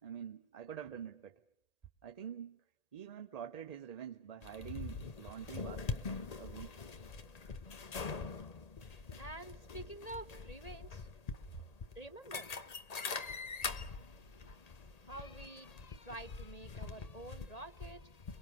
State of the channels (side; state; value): right; late; 1.8 ms